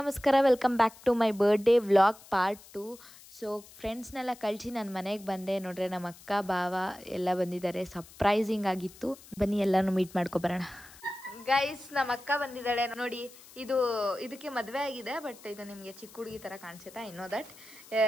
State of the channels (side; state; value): left; noise; hiss, 21 dB below the sound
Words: welcome back to my birthday vlog part 2. So ಫ್ರೆಂಡ್ಸ್ನೆಲ್ಲ ಕಳಿಸಿ ನಾನು ಮನೆಗೆ ಬಂದೆ. ನೋಡ್ರೆ ನಮ್ಮ ಅಕ್ಕ ಭಾವ ಎಲ್ಲ ಬಂದಿದ್ದಾರೆ, ಸರ್ಪ್ರೈಸಿಂಗ್ ಆಗಿತ್ತು. ಬನ್ನಿ ಎಲ್ಲನೂ ಮೀಟ್ ಮಾಡ್ಕೊಬರೋಣ. ಗೈಸ್, ನಮ್ಮ ಅಕ್ಕ ಬಂದಿದ್ದಾಳೆ ನೋಡಿ. ಇದಕ್ಕೆ ಮದುವೆ ಆಗಿದೆ, ಬಟ್ ಇದು ನಿಮಗೆ ಚಿಕ್ಕ ಹುಡುಗಿ ಥರ ಕಾಣಿಸುತ್ತಾ? ಇನ್ನೋ ದಟ್